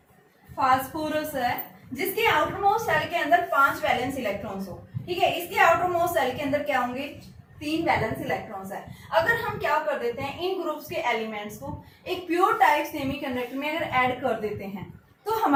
फास्फोरस है, जिसके आउटर मोस्ट सेल के अंदर 5 वैलेंस इलेक्ट्रॉन्स हो, ठीक है। इसके आउटर मोस्ट सेल के अंदर क्या होंगे? 3 वैलेंस इलेक्ट्रॉन्स है। अगर हम क्या कर देते हैं, इन ग्रुप्स के एलिमेंट्स को एक प्योर टाइप सेमीकंडक्टर में अगर ऐड कर देते हैं तो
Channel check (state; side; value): identical; both; correlation 1.00